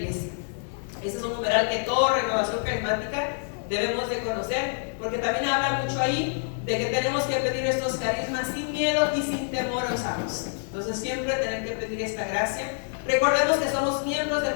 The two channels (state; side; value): silent; right; 60 dB below the other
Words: Este es un numeral que toda renovación carismática debemos de conocer, porque también habla mucho ahí de que tenemos que pedir estos carismas sin miedo y sin temor a usarlos. Entonces siempre tener que pedir esta gracia. Recordemos que somos miembros del